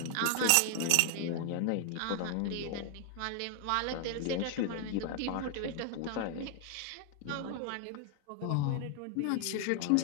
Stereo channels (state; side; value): different; both; correlation 0.00